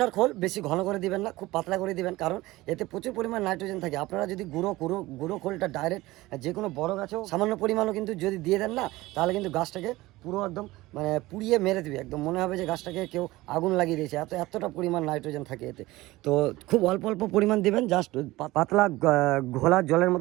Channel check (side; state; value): left; quieter; 19.0 dB